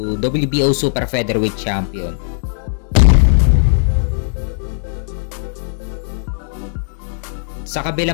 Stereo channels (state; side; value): silent; right; digital silence